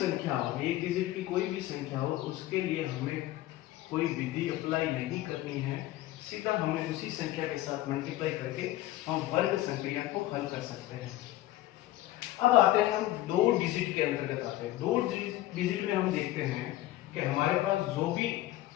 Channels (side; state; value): right; quieter; 15.5 dB